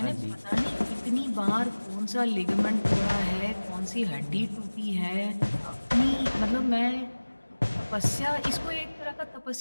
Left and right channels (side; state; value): both; inverted; correlation -1.00